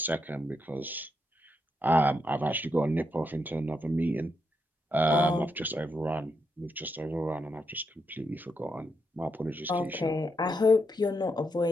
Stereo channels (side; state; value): both; normal; correlation 0.81